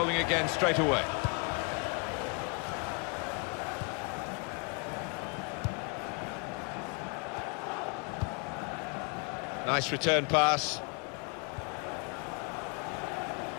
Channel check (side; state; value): right; quieter; 33.3 dB